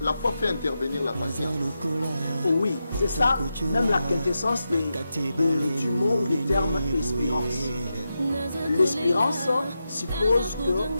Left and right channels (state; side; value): inverted; both; correlation -0.89